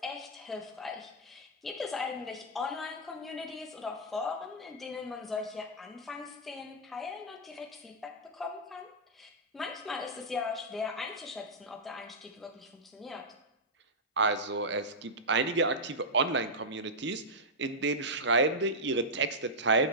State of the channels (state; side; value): normal; both; correlation -0.09